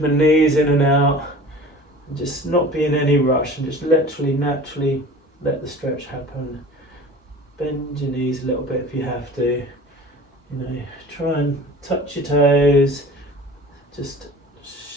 my knees in and out and just not be in any rush, and just literally naturally let the stretch happen. Bend your knees a little bit if you have to, try and touch your toes, just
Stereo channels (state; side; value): normal; both; correlation 0.41